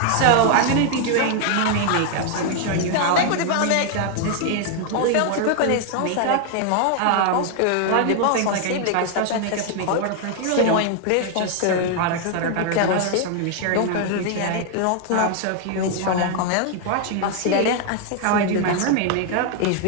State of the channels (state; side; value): different; both; correlation 0.00